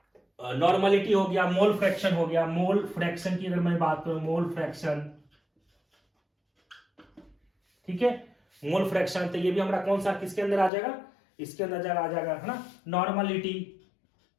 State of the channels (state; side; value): drops out; right; at 10.7 s